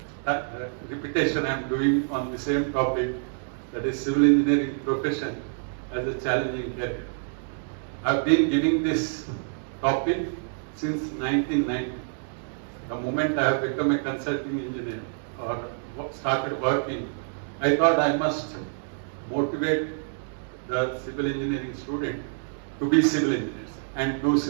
repetition I am doing on the same topic, that is civil engineering profession as a challenging career. I have been giving this topic since 1990. The moment I have become a consulting engineer or started working, I thought I must motivate the civil engineering student to be civil engineers and do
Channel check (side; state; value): left; silent; digital silence